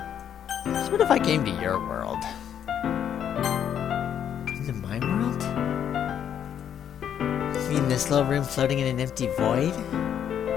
What if I came to your world? Into my world? You mean this little room floating in an empty void?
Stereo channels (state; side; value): quieter; right; 9.2 dB